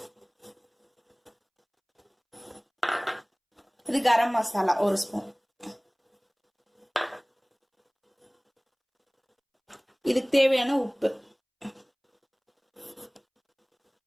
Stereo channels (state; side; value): identical; both; correlation 1.00